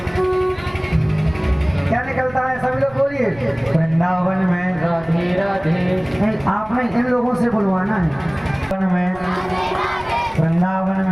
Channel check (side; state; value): right; noise; rumble, 23 dB below the sound